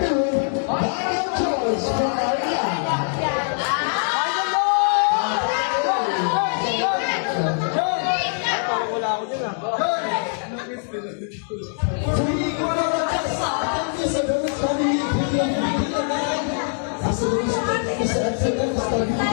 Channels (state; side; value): silent; right; 64 dB below the other